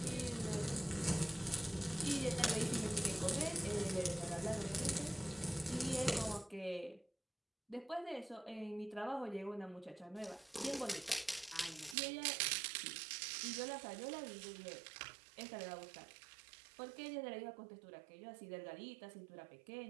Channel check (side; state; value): left; drops out; at 12.0 s